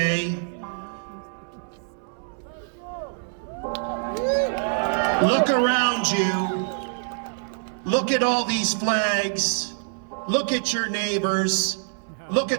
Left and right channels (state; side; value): silent; left; 62 dB below the other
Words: Look around you. Look at all these flags. Look at your neighbors. Look